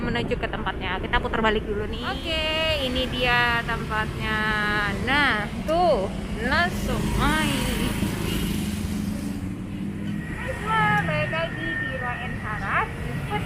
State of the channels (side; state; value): both; identical; correlation 1.00